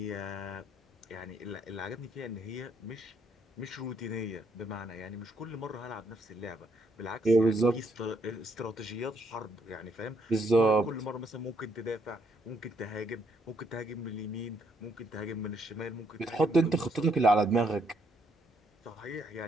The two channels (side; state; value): both; normal; correlation 0.71